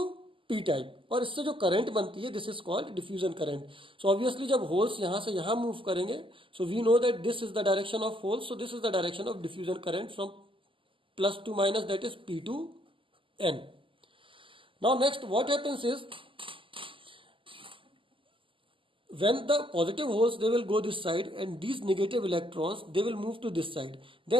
P type. और इससे जो current बनती है, this is called diffusion current. So obviously जब holes यहाँ से यहाँ move करेंगे, so we know that this is the direction of holes. So this is the direction of diffusion current from plus to minus, that is P to N. Now next what happens is, when the positive holes they will go this side and these negative electrons they will move to this side.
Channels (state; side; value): late; left; 0.25 ms